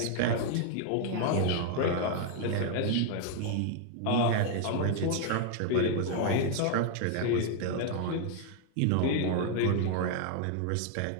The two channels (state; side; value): different; both; correlation 0.00